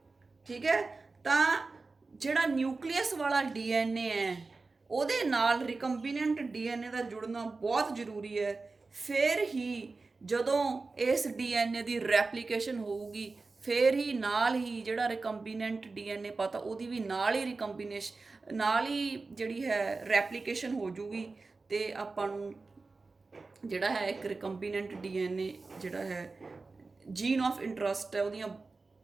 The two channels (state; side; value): quieter; left; 3.8 dB